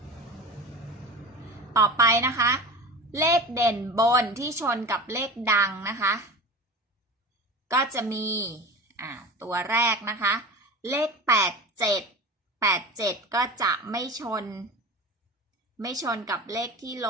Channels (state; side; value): normal; both; correlation 0.32